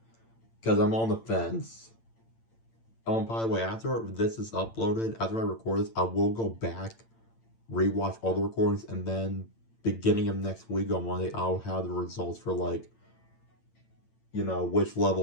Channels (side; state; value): right; late; 8.8 ms